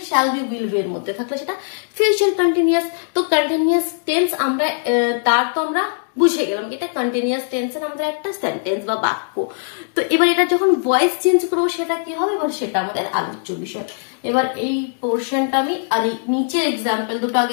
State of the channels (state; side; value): silent; right; digital silence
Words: shall be will B এর মধ্যে থাকলে সেটা ফিউচার কন্টিনিউয়াস। তো কন্টিনিউয়াস টেন্স আমরা তার তো আমরা বুঝে গেলাম এটা কন্টিনিউয়াস টেন্সের আমাদের একটা সেন্টেন্স বা বাক্য। তো এবার এটা যখন ভয়েস চেঞ্জ করবো সেটা কি হবে, এবার সেটা আমাদের আলোচ্য বিষয়। এবার এই পোর্শনটা আমি আর এই নিচের এক্সাম্পল দুটো